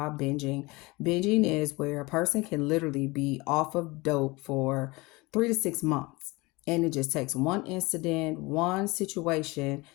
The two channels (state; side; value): quieter; right; 23.8 dB